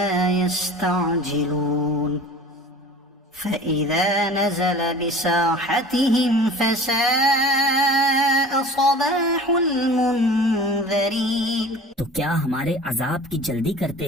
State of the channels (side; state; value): both; normal; correlation 0.40